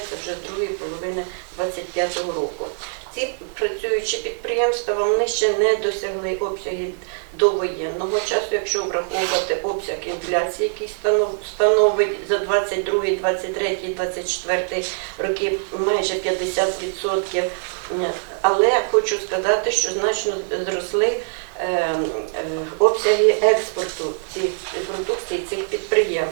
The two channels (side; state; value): left; silent; digital silence